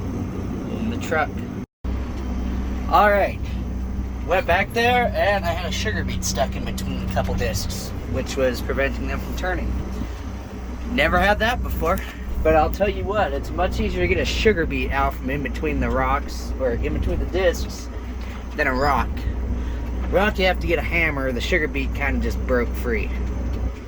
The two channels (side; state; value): both; identical; correlation 1.00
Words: in the truck. All right, went back there and I had a sugar beet stuck in between a couple discs, which was preventing them from turning. Never had that before, but I'll tell you what, it's much easier to get a sugar beet out from in between the rocks, or in between the discs, than a rock. Rock, you have to get a hammer. The sugar beet kind of just broke free.